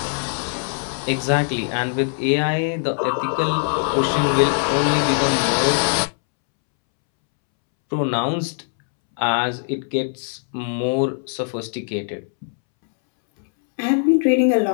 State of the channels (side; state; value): right; silent; 65 dB below the other